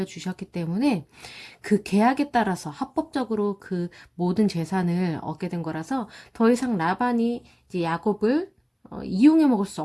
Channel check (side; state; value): both; identical; correlation 1.00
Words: 때문에 그 계약에 따라서 합법적으로 그 모든 재산을 얻게 된 거라서 더 이상 라반이 이제 야곱을 이용해 먹을 수